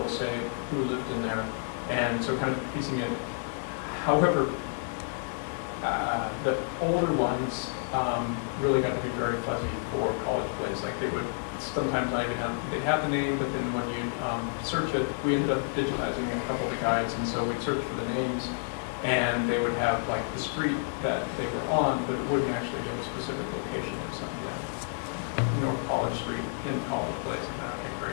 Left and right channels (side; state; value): right; silent; digital silence